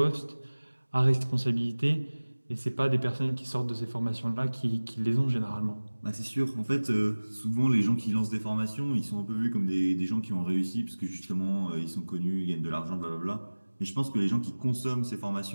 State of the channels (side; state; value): both; inverted; correlation -1.00